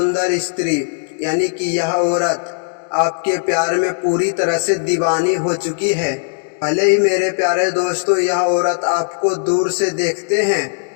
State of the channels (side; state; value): right; silent; digital silence